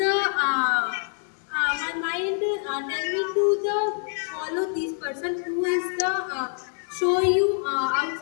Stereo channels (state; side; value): silent; right; 56 dB below the other